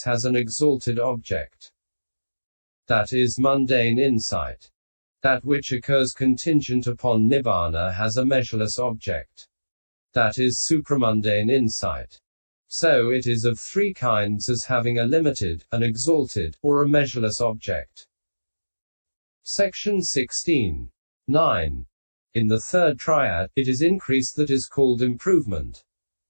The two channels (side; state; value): both; inverted; correlation -1.00